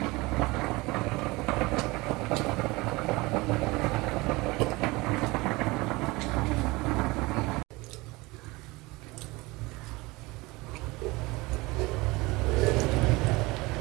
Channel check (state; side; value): quieter; left; 22.8 dB